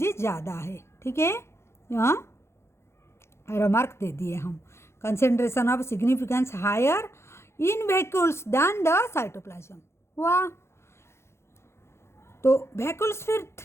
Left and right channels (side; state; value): right; late; 0.13 ms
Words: ज़्यादा है, ठीक है। यहाँ रिमार्क दे दिए हम, concentration of significance higher in vacuoles than the cytoplasm. वाह। तो वैक्यूल्स फिर